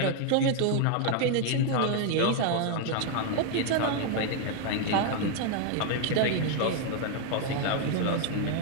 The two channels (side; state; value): both; different; correlation 0.00